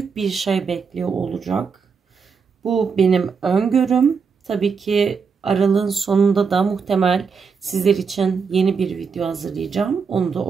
bir şey bekliyor olacak. Bu benim öngörüm. Tabii ki aralığın sonunda da muhtemel sizler için yeni bir video hazırlayacağım. Onu da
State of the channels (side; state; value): left; quieter; 5.7 dB